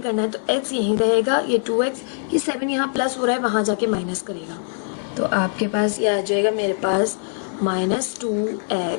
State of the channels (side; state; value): right; silent; 59 dB below the other